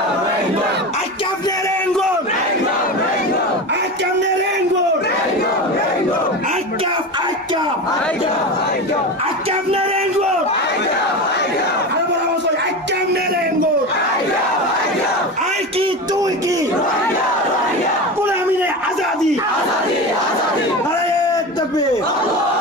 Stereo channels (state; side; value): normal; both; correlation 0.25